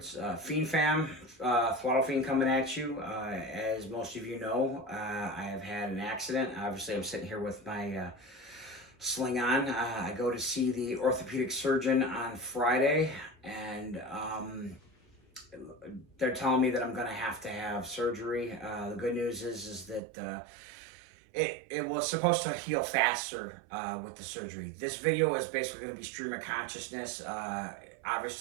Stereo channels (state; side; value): drops out; left; at 20.0 s